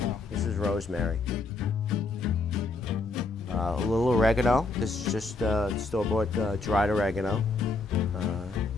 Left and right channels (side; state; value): right; quieter; 3.6 dB